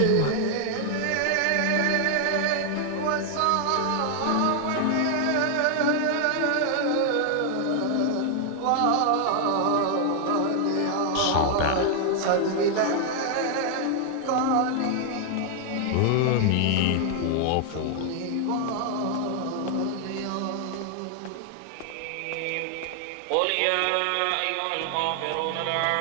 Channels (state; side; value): different; both; correlation 0.00